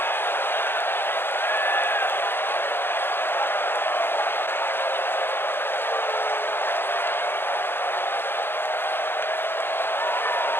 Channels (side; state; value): right; late; 0.10 ms